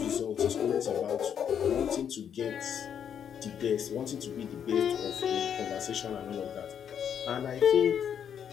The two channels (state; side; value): quieter; right; 8.4 dB